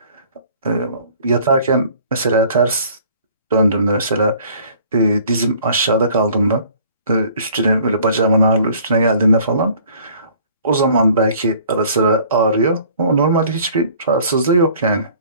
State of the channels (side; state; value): both; inverted; correlation -0.54